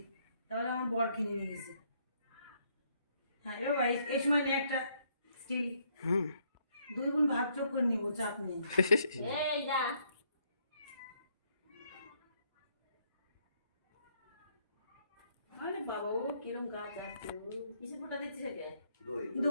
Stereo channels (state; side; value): inverted; both; correlation -0.70